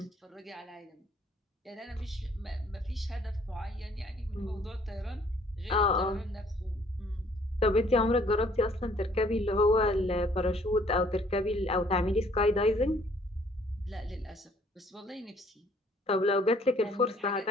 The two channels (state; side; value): normal; both; correlation 0.60